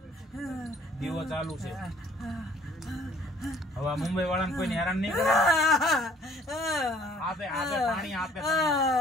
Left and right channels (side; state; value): both; normal; correlation 0.57